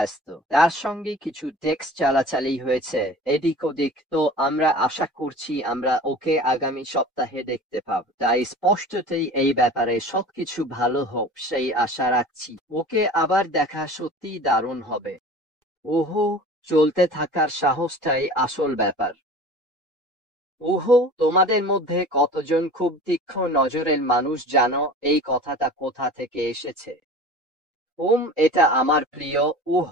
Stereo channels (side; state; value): both; normal; correlation 0.40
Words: তার সঙ্গে কিছু টেক্সট চালাচালি হয়েছে এদিক ওদিক। তো আমরা আশা করছি আমরা ওকে আগামী সপ্তাহে দেখতে পাব। তাই স্পষ্টতই এই ব্যাপারে সবকিছু ভালো হোক সেই আশা রাখছি। ওকে আবার দেখা সত্যিই দারুণ হবে। ওহো, চলতে থাকার সাহসটাই আসল ব্যাপার। ওহো, তোমাদের মধ্যে কতজন খুব তীক্ষ্ণ নজরের মানুষ জানো এই কথাটা কোথা থেকে এসেছে? এটা আমার প্রিয়